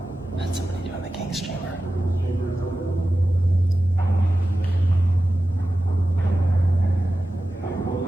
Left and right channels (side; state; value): both; normal; correlation 0.94